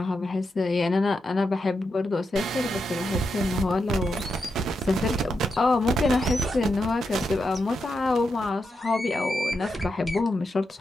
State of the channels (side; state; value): both; normal; correlation 0.86